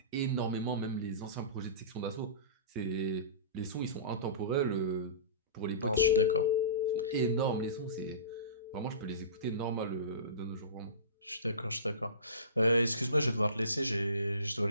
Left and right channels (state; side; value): inverted; both; correlation -0.35